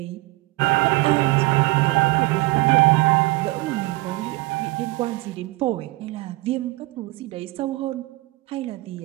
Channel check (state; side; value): quieter; left; 21.2 dB